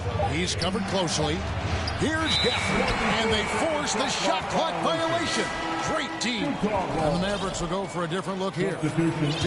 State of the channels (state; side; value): identical; both; correlation 1.00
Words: He's covered closely. Here's Gafford. And they force the shot clock violation. Great team. And the Mavericks will go for a different look here.